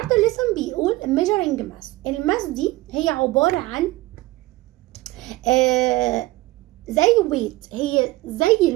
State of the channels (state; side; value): quieter; left; 19.1 dB